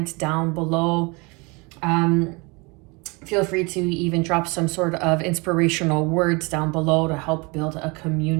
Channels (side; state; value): left; quieter; 28.0 dB